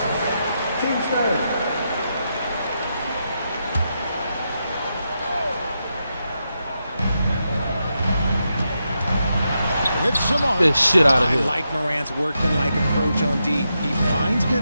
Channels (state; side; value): inverted; both; correlation -0.85